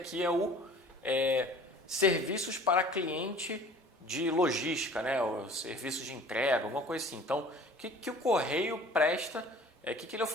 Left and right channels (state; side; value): normal; both; correlation 0.47